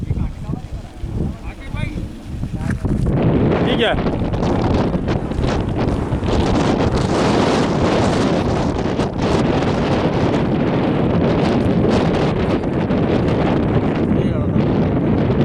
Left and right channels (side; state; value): both; identical; correlation 1.00